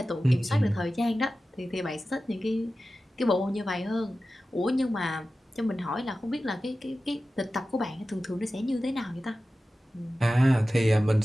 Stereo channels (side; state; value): both; normal; correlation 0.94